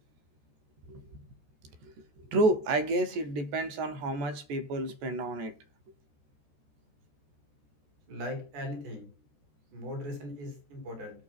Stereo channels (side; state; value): left; late; 14 ms